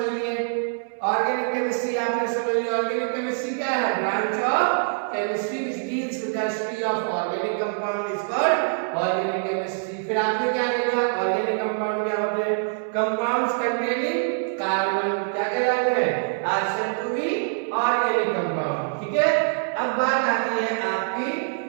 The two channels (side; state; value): left; silent; 60 dB below the other